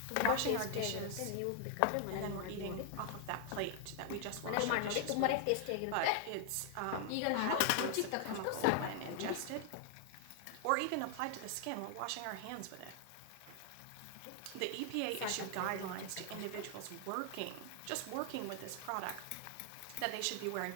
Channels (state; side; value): different; both; correlation 0.00